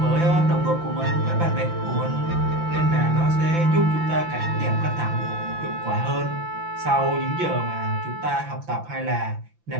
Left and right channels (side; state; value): left; late; 5.9 ms